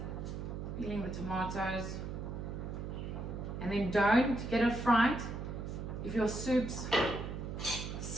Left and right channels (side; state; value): right; noise; hum, 5 dB below the sound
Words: peeling the tomatoes. And then don't get it fried. If your soup's